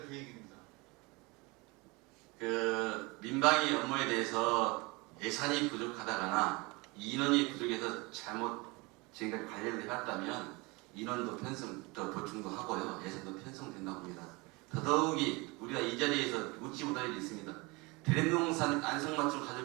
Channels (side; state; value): left; quieter; 25.8 dB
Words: 계획입니다. 그 민방위 업무에 대해서 예산이 부족하다거나 인원이 부족해서 잘못 지금까지 관리를 해왔다면 인원도 더 보충도 하고요. 예산도 편성된다고 봅니다. 더더욱이 우리가 이 자리에서 묻지 못할 일이 있습니다. 대림동산 안성맞춤